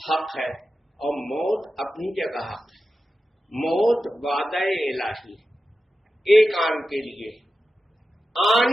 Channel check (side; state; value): both; normal; correlation 0.92